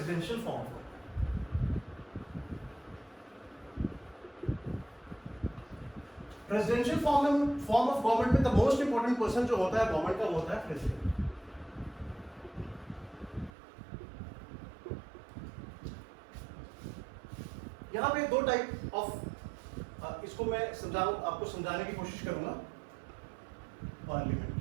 form of government. Presidential form of government में द मोस्ट इंपॉर्टेंट पर्सन जो होता है गवर्नमेंट का, वो होता है प्रेसिडेंट। यहाँ पे 2 टाइप ऑफ, इसको मैं आपको समझाने की कोशिश करूंगा। पार्लियामेंट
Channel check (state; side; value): drops out; left; at 13.5 s